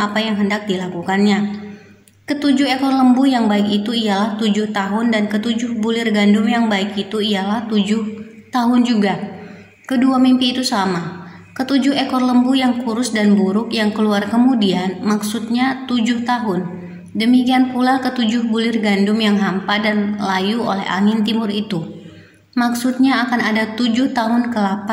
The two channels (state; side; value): identical; both; correlation 1.00